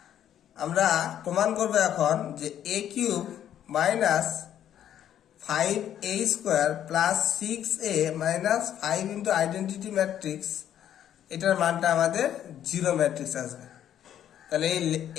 আমরা প্রমাণ করবো এখন যে A cube minus 5a square plus 6a minus 5 into identity matrix, এটার মানটা আমাদের জিরো ম্যাট্রিক্স আসবে। তাহলে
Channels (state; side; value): quieter; right; 10.5 dB